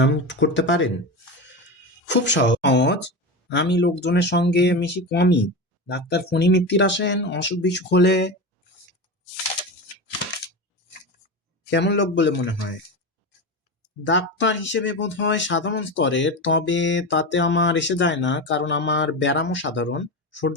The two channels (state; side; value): normal; both; correlation 0.22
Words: করতে পারেন? খুব সহজ। আমি লোকজনের সঙ্গে মিশি কমই। ডাক্তার ফণি মিত্তির আসেন, অসুখ বিসুখ হলে। কেমন লোক বলে মনে হয়? ডাক্তার হিসেবে বোধ হয় সাধারণ স্তরের, তবে তাতে আমার এসে যায় না, কারণ আমার ব্যারামও সাধারণ।